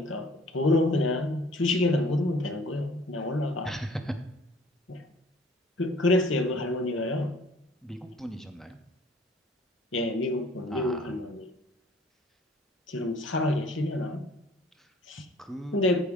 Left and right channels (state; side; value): normal; both; correlation 0.53